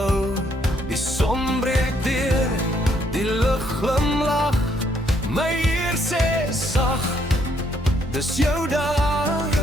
Die son breek deur, die lug glimlach. My Heer sê sag, dis jou dag.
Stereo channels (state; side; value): normal; both; correlation 0.70